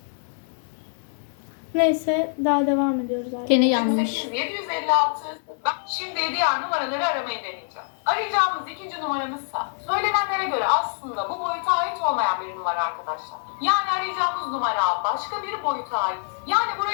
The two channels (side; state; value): right; silent; 62 dB below the other